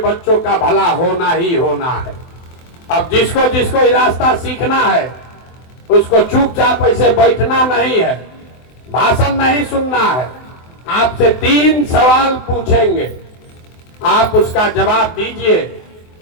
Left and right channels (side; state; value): right; late; 24 ms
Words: का भला होना ही होना है। अब जिसको जिसको ये रास्ता सीखना है उसको चुपचाप ऐसे बैठना नहीं है, भाषण नहीं सुनना है। आपसे 3 सवाल पूछेंगे, आप उसका जवाब दीजिए।